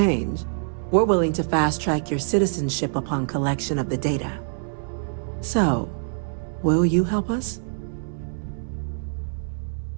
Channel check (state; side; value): silent; left; digital silence